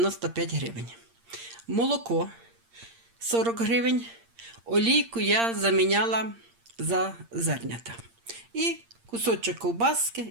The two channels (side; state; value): left; late; 8.7 ms